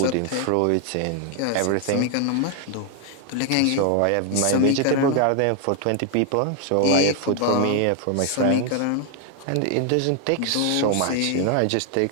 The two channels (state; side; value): different; both; correlation 0.00